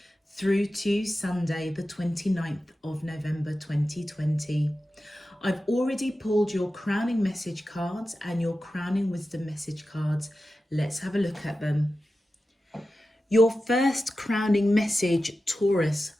through to Sunday, the 29th of November 2020. I've already pulled your crowning message cards and your crowning wisdom message cards. Let's have a look at them. Your first crowning message, Taurus,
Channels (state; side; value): normal; both; correlation 0.93